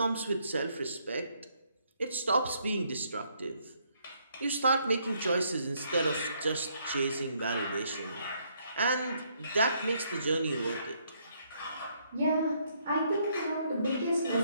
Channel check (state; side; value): inverted; both; correlation -0.71